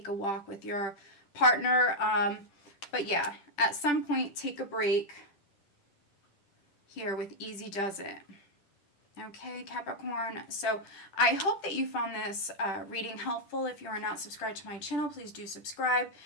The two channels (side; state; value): right; late; 10 ms